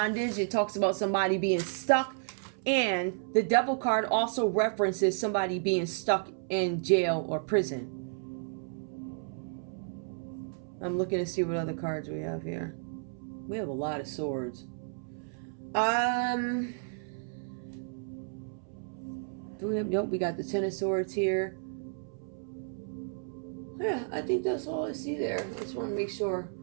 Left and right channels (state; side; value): silent; left; 56 dB below the other